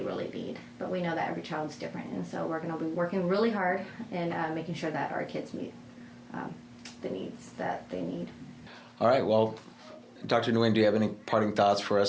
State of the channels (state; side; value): identical; both; correlation 1.00